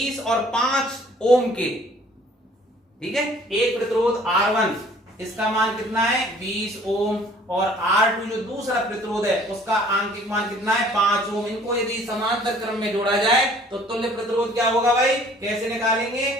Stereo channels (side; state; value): both; normal; correlation 0.54